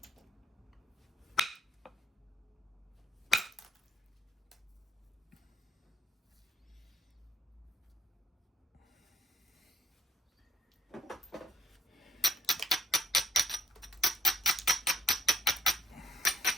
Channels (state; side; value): normal; both; correlation 0.63